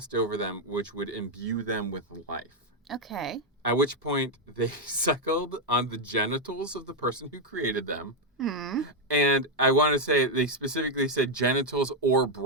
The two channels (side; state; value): both; normal; correlation 0.03